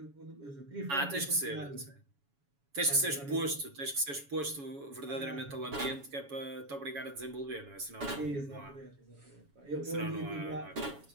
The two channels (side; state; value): left; late; 7.1 ms